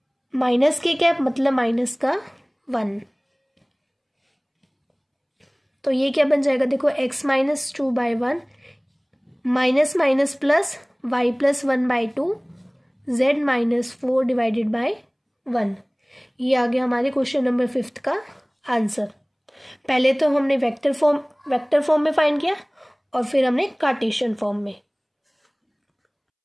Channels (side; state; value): both; identical; correlation 1.00